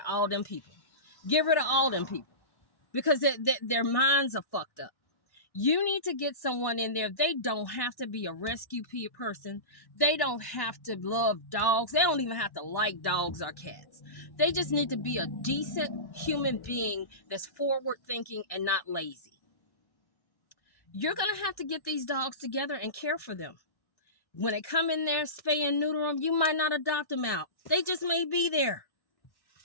all them people. Get rid of all them people. Because their minds are fucked up. You need to get someone in there. They don't have to be a rescue person. They don't have to love dogs. They don't even have to like dogs or cats. They just need to be a decent human being that's forward thinking and not lazy. You're going to have to get these dogs together and care for them. When they come in there, spay and neuter them, you might not adopt them out. They just may be there.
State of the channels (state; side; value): late; right; 1.1 ms